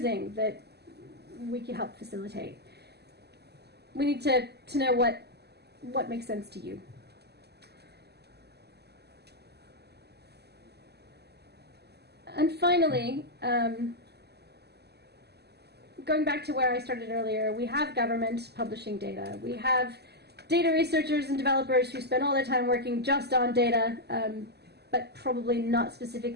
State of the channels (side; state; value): left; late; 0.48 ms